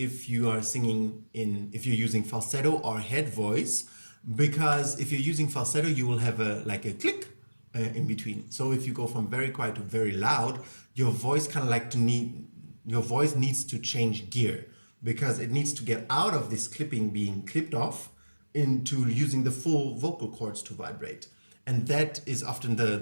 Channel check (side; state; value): both; inverted; correlation -1.00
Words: you are singing if you're using falsetto or head voice, because if you're using falsetto, you will have a click in between. So if you go from very quiet to very loud, your voice your voice needs to change gear, because it needs to get out of this clipping being clipped off into using the full vocal cords to vibrate. And that is often